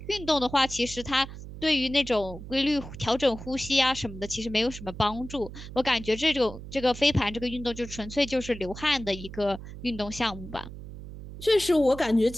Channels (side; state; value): right; noise; hum, 12 dB below the sound